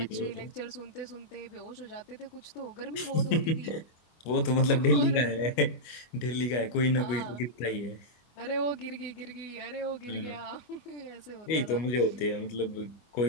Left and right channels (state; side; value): late; right; 25 ms